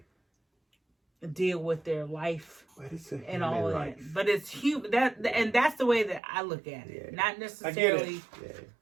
deal with their life and all of that. But it's human. That's the way that I look at it. Not necessarily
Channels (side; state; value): left; drops out; at 6.2 s